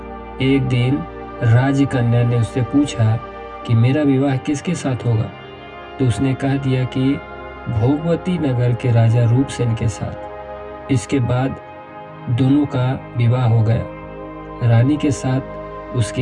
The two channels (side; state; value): both; identical; correlation 1.00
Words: एक दिन राजकन्या ने उससे पूछा कि मेरा विवाह किसके साथ होगा, तो उसने कह दिया कि भोगवती नगर के राजा रूपसेन के साथ। इसके बाद दोनों का विवाह हो गया। रानी के साथ